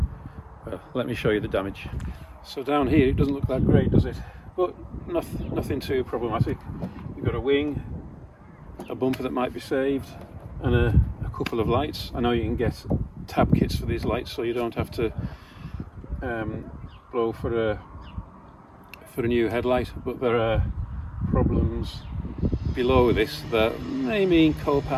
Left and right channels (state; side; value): identical; both; correlation 1.00